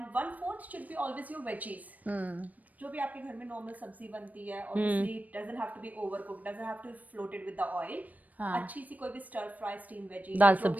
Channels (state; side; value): late; left; 0.076 ms